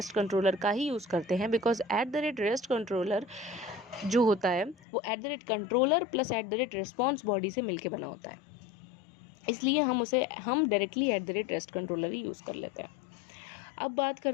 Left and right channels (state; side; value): drops out; right; at 4.8 s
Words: कंट्रोलर का ही यूज़ करते हैं, बिकॉज @REST कंट्रोलर जो होता है वो @कंट्रोलर प्लस @रिस्पॉन्स बॉडी से मिलके बना होता है, इसलिए हम डायरेक्टली @REST कंट्रोलर ही यूज़ कर लेते हैं। अब बात